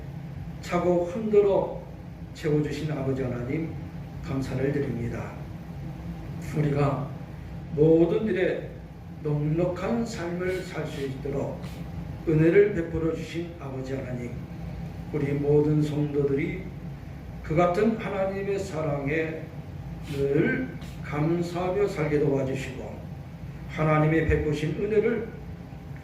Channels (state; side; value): identical; both; correlation 1.00